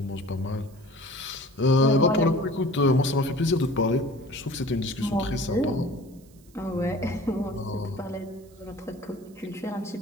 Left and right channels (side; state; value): right; noise; hiss, 29 dB below the sound